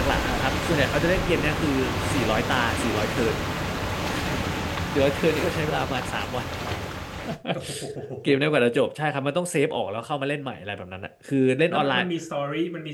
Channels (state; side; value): identical; both; correlation 1.00